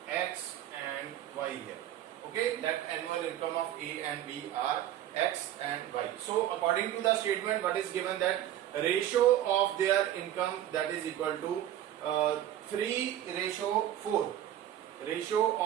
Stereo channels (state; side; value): quieter; left; 12.0 dB